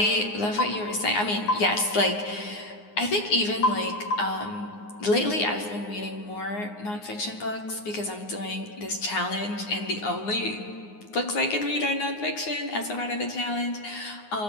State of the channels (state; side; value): late; right; 9.6 ms